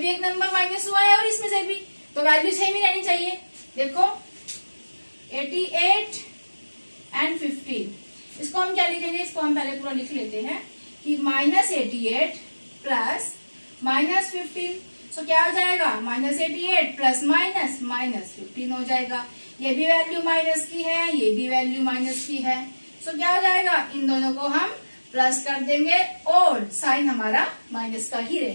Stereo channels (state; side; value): inverted; both; correlation -1.00